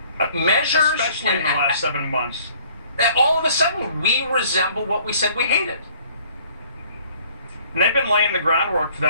Measures. Especially in the last 7 months. All of a sudden, we resemble what we said we hated. And they've been laying the groundwork for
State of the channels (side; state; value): both; inverted; correlation -0.57